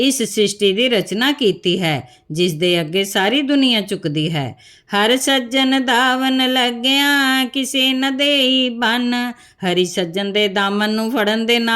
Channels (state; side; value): identical; both; correlation 1.00